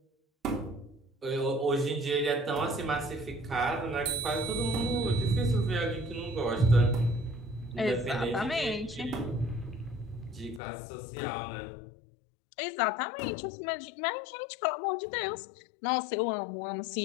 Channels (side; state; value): right; drops out; at 10.6 s